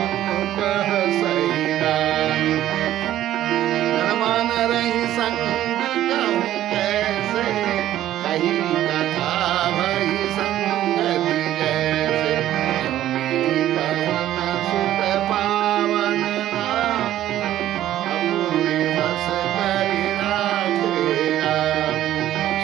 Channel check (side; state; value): left; quieter; 12.9 dB